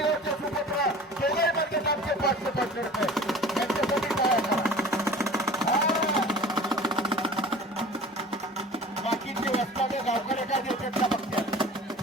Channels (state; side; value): normal; both; correlation 0.42